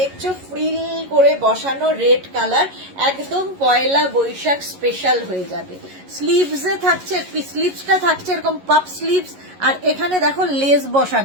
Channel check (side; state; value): left; late; 11 ms